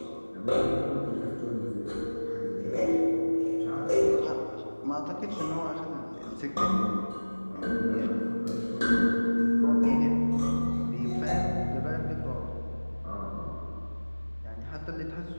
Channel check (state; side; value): inverted; both; correlation -1.00